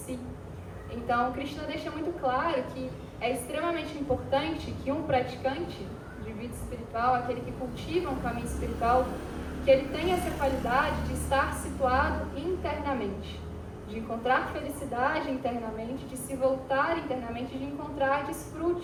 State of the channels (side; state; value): both; identical; correlation 1.00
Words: Então Krishna deixa muito claro que é extremamente importante que um praticante de vida espiritual, aquele que cultiva um caminho espiritual, que ele tenha essa qualidade de estar situado internamente, de encontrar felicidade internamente, de se voltar internamente, de encontrar